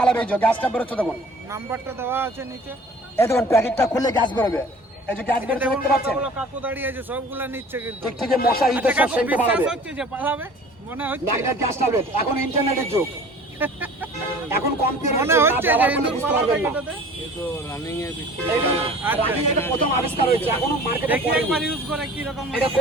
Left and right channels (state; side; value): normal; both; correlation 0.46